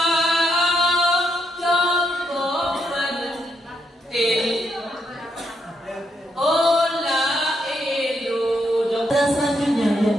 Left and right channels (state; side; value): normal; both; correlation 0.79